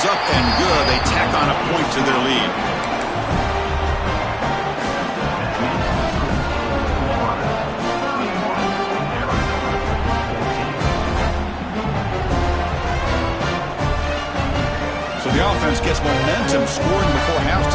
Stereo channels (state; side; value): identical; both; correlation 1.00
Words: up and good. They tack on a point to their lead. The offense gets momentum scoring before